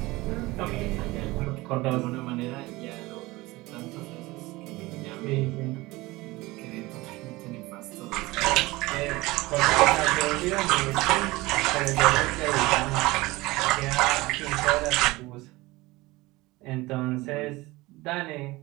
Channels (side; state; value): left; quieter; 20.7 dB